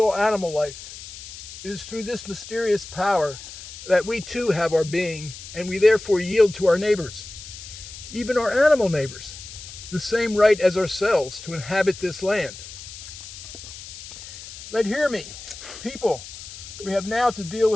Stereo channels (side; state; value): left; noise; hiss, 13 dB below the sound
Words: animal life. It is through this mysterious power that we too have our being, and we therefore yield to our neighbors, even our animal neighbors, the same right as ourselves to inhabit this land. But hear me, people, we have now to deal